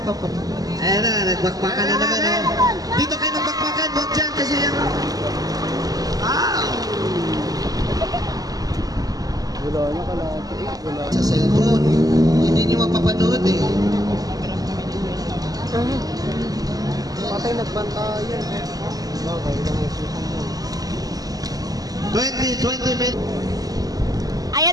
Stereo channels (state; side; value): late; left; 0.18 ms